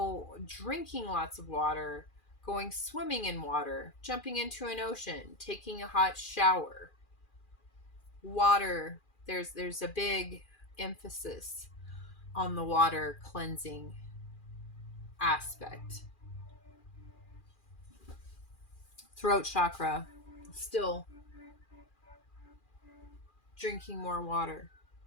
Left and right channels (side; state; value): right; late; 2.4 ms